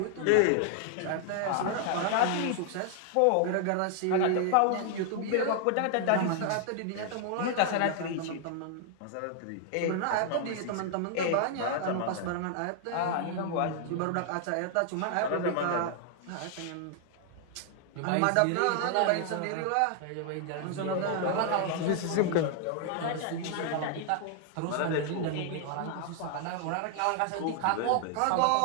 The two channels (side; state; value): both; different; correlation 0.00